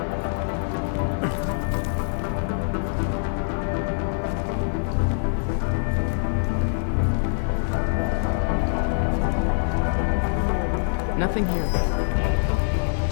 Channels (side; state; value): right; silent; digital silence